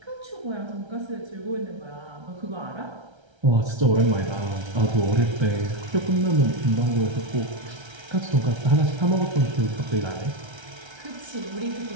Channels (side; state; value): left; late; 1.3 ms